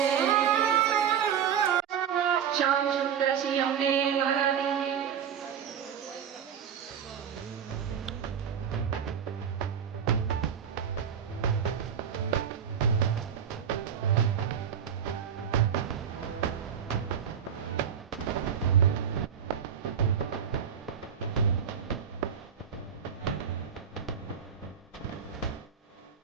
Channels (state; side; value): quieter; left; 8.1 dB